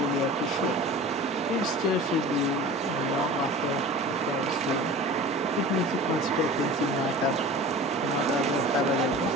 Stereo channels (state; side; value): normal; both; correlation 0.39